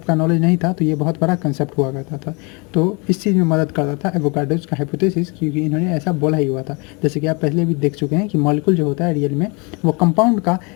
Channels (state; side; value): quieter; right; 30.2 dB